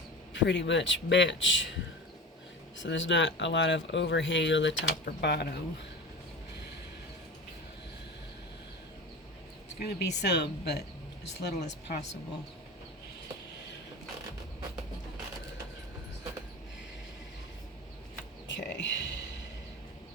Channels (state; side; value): normal; both; correlation 0.31